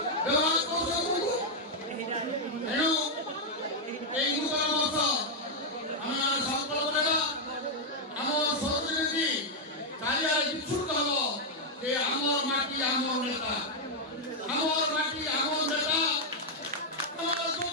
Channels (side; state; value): both; normal; correlation -0.01